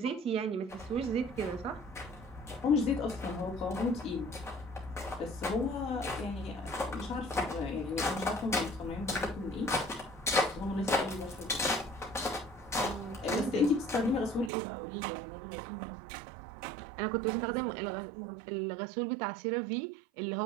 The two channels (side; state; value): left; drops out; at 14.5 s